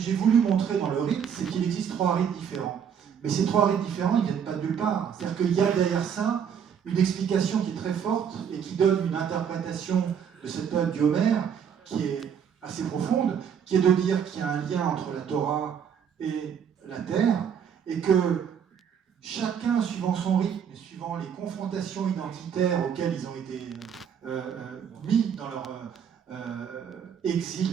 voulu montrer dans le rite, c'est qu'il existe 3 rites différents. Mais ces 3 rites différents, ils ne viennent pas de nulle part. C'est-à-dire qu'il y a derrière ça une explication qui est très forte et qui donne une interprétation de cette période du Homère qui est assez profonde, qui est de dire qu'il y a un lien entre la Torah et la terre, et que chacun, suivant son rythme, suivant les confrontations identitaires auxquelles ils ont été mis dans leur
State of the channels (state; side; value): quieter; left; 7.8 dB